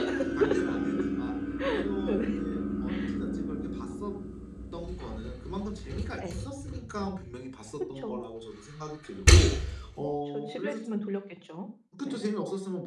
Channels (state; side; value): identical; both; correlation 1.00